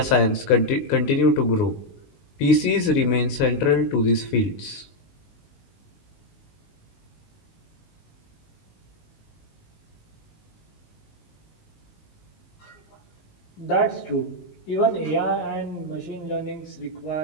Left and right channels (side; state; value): right; late; 19 ms